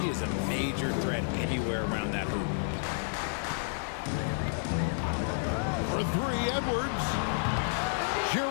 is a major threat anywhere around that hoop. For three, Edwards.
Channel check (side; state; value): right; silent; digital silence